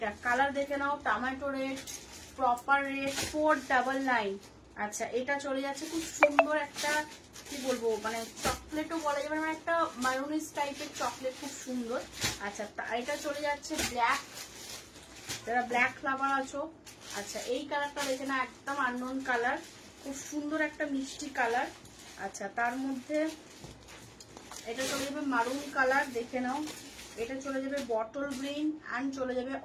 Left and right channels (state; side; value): identical; both; correlation 1.00